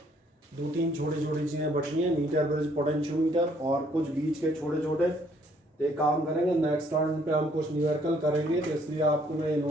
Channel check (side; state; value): both; normal; correlation 0.65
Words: 2-3 छोटी छोटी चीज़ें बची हैं, मीटर ब्रिज पोटेंशियोमीटर और कुछ बीच के छोटे छोटे। तो एक काम करेंगे, नेक्स्ट टर्न पे हम कुछ न्यूमेरिकल करेंगे, तो इसलिए आपको मैं